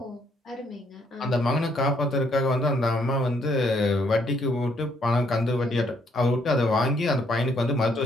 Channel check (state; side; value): normal; both; correlation 0.69